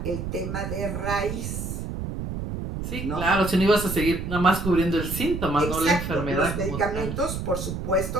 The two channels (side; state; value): right; noise; rumble, 5 dB below the sound